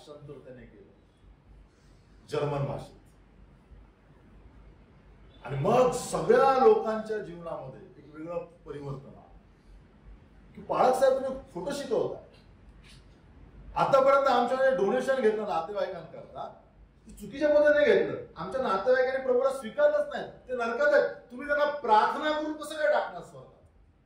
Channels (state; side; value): identical; both; correlation 1.00